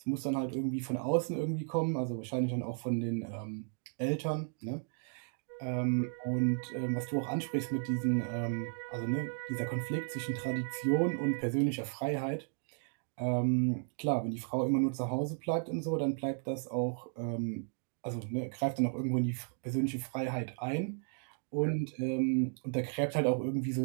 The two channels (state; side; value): silent; left; 55 dB below the other